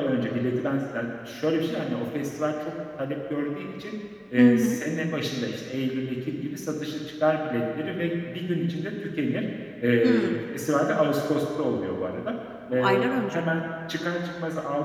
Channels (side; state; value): both; identical; correlation 1.00